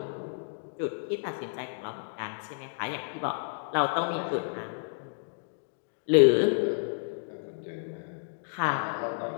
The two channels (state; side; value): silent; right; digital silence